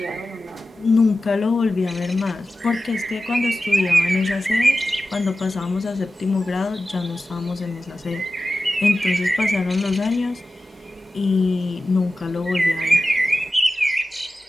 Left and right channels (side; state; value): both; normal; correlation 0.94